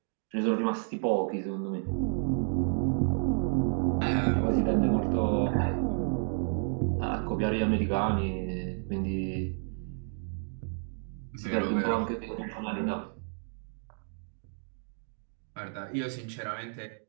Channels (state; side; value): silent; left; 57 dB below the other